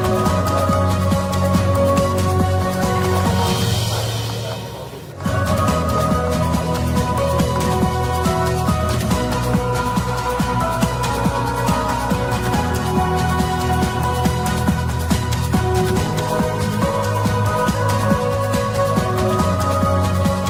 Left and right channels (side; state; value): both; identical; correlation 1.00